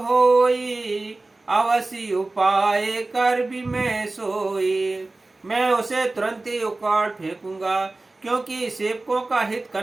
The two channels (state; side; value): quieter; left; 3.1 dB